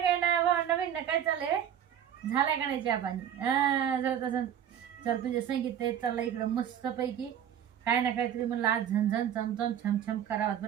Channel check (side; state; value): left; quieter; 9.6 dB